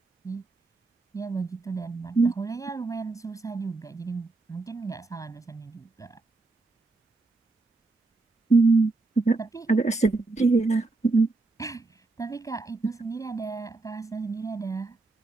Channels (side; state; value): left; quieter; 3.4 dB